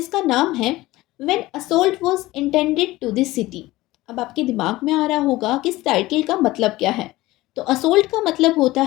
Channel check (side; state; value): right; quieter; 18.3 dB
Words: नाम है when assault was intended to the city. अब आपके दिमाग में आ रहा होगा कि इस टाइटल का मतलब क्या है। तो असोल्ट का मतलब होता